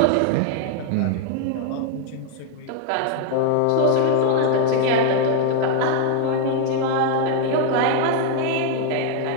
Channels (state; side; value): different; both; correlation 0.00